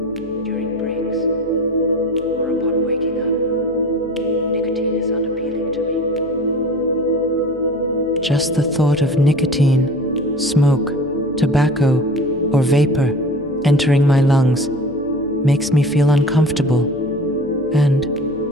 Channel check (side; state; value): left; noise; hum, 22 dB below the sound